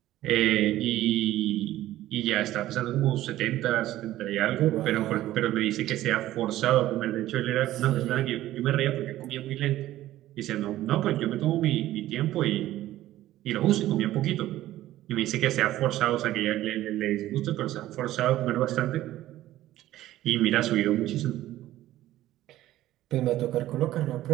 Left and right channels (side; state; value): left; quieter; 14.6 dB